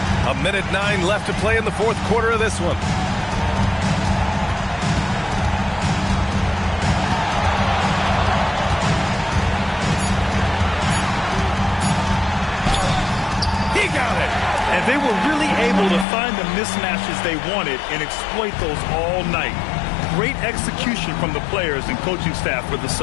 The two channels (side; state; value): right; drops out; at 16.1 s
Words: A minute 9 left to play in the 4th quarter of this one. He got it. And they were really able to find the mismatches they wanted and exploit those all night. Great execution from the players and coaching staff for the